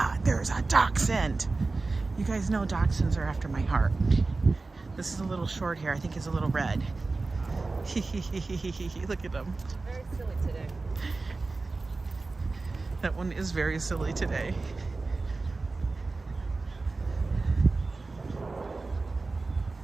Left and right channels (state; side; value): quieter; left; 3.6 dB